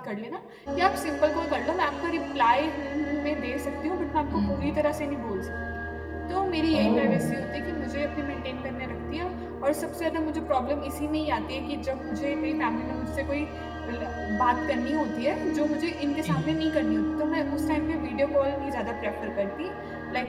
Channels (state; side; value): identical; both; correlation 1.00